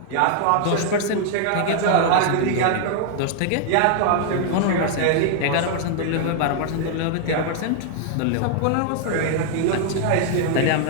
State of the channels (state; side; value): different; both; correlation 0.00